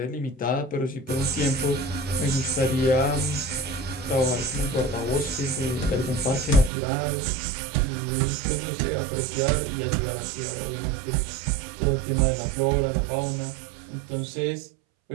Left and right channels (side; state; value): left; drops out; at 6.7 s